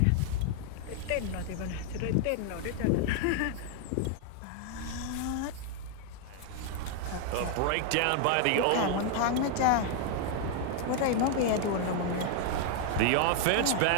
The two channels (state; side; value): different; both; correlation 0.00